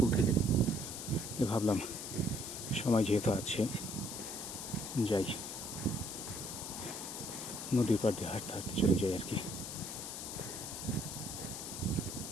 থেকে। ভাবলাম সময় যেহেতু আছে, যাই নদীর পাড় দিয়ে হাঁটতে হাঁটতে চলে যাই আর কি।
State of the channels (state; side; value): noise; left; hiss, 7 dB below the sound